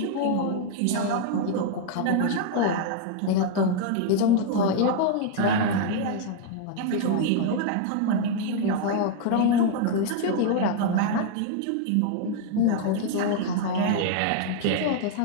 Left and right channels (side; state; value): both; different; correlation 0.00